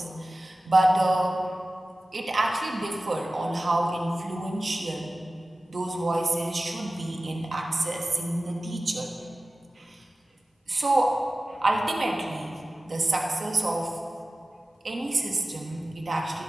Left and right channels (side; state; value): both; normal; correlation 0.96